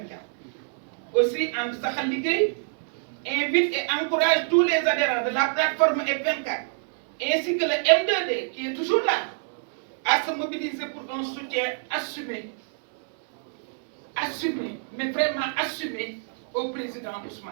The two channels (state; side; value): silent; left; digital silence